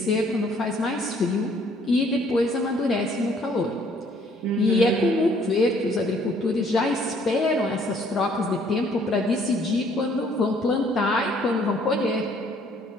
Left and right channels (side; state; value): both; normal; correlation 0.62